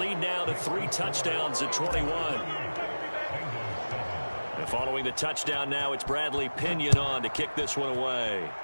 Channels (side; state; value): both; inverted; correlation -1.00